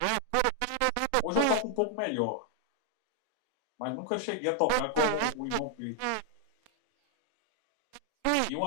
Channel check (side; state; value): both; different; correlation 0.00